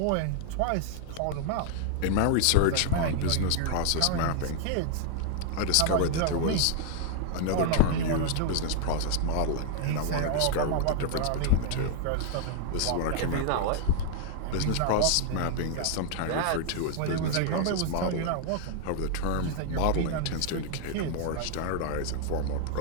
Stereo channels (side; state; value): both; different; correlation 0.00